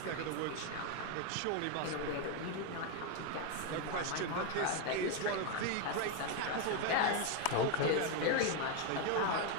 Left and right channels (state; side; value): different; both; correlation 0.01